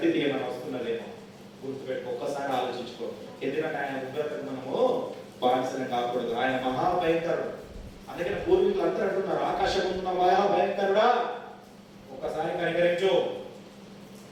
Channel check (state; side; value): identical; both; correlation 1.00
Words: ఏమైనా వస్తున్నదేమో గుర్తుపెట్టుకో, ఒక్కసారి ఆలోచించుకో. ఎందుకంటే ఆయన ఉగ్రతకు మనము బానిసని కాకూడదు. ఆయన మహాభయంకరుడు. అందుకని పూర్వీకులు అందరూ అంటున్నారు, ఆకాశం ఉన్న మహాభయంకరుడా, ఒక్కసారి కనికరించు,